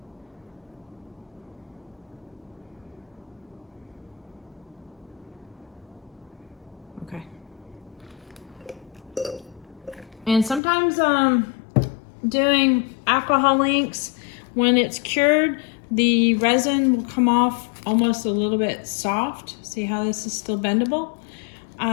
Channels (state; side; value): drops out; right; at 10.6 s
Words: Okay. And sometimes doing alcohol inks, when it's cured, the resin will come off almost a little bit soft. See how this is still bendable?